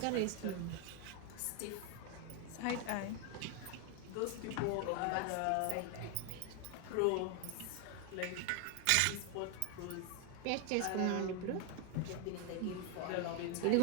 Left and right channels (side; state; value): both; different; correlation 0.01